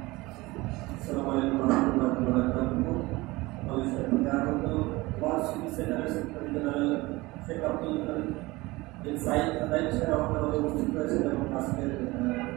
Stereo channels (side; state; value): left; quieter; 21.3 dB